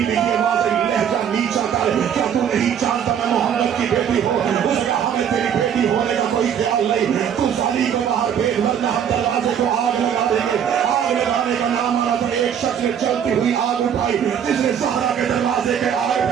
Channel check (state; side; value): quieter; left; 8.5 dB